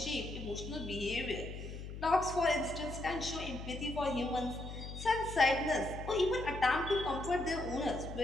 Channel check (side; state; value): left; noise; hum, 9 dB below the sound